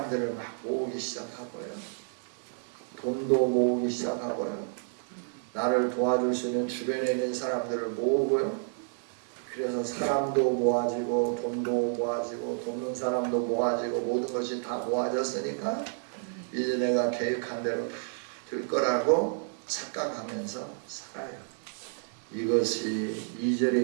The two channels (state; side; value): silent; left; digital silence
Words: 막 모으기 시작하고요. 돈도 모으기 시작하고요. 나를 도와줄 수 있는 주변에 있는 사람들을 모으고요. 그래서 사람도 모아지고 돈도 모아지고 돕는 사람도 모아지고 모든 것이 다 모아졌으니까 이제 내가 계획한 대로 다 될 거라고 착각하면서 살아요. 이것이 2절에